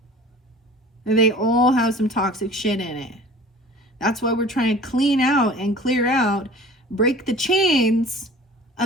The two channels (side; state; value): both; normal; correlation 0.44